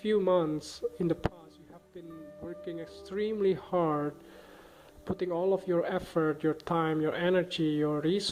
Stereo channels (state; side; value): identical; both; correlation 1.00